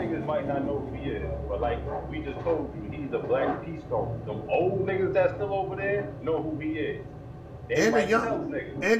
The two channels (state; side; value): identical; both; correlation 1.00